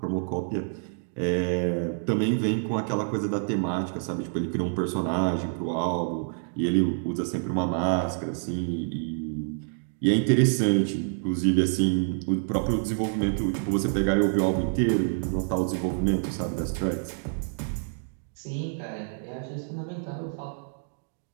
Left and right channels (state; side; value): silent; left; digital silence